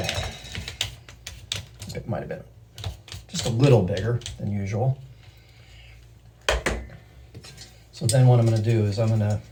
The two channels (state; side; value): identical; both; correlation 1.00